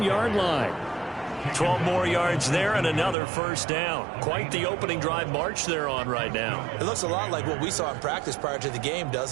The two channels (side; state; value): left; drops out; at 3.2 s